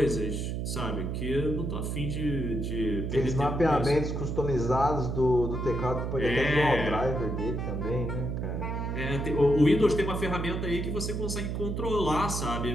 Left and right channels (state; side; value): noise; right; hum, 2 dB below the sound